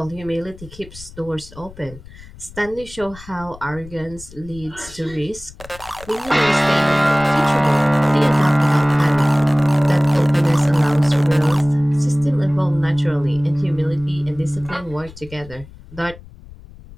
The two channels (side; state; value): left; noise; rumble, 19 dB below the sound